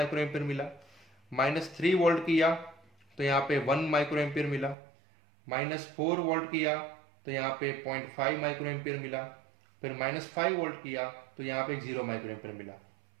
मिला, -3 वोल्ट किया तो यहाँ पे 1 माइक्रोएम्पियर मिला, -4 वोल्ट किया तो यहाँ पे 0.5 माइक्रोएम्पियर मिला, फिर -5 वोल्ट किया तो यहाँ पे 0 माइक्रोएम्पियर मिला।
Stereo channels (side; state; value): left; drops out; at 4.8 s